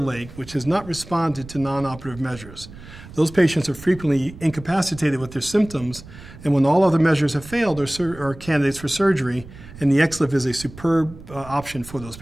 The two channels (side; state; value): right; noise; rumble, 17 dB below the sound